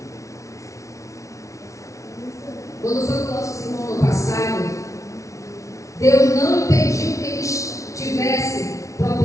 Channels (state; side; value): late; right; 0.15 ms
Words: Quando foi com nossos irmãos no passado, Deus não impediu que eles tivessem